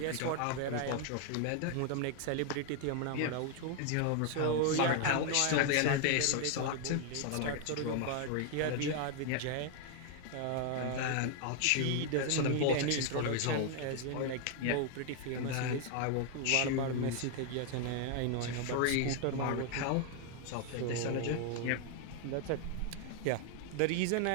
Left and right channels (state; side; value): different; both; correlation 0.00